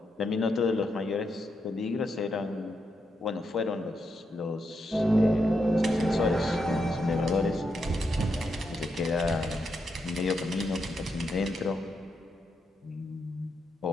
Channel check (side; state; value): both; normal; correlation 0.83